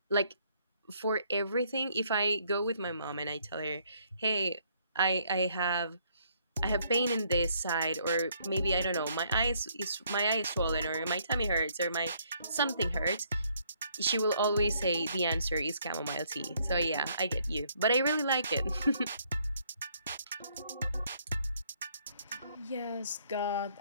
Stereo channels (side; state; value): both; inverted; correlation -0.68